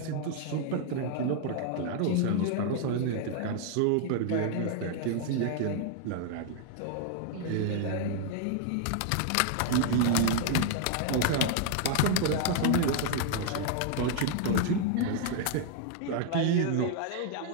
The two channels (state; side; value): different; both; correlation 0.00